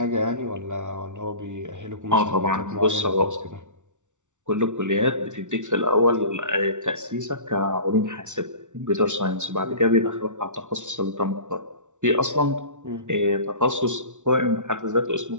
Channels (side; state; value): left; late; 0.86 ms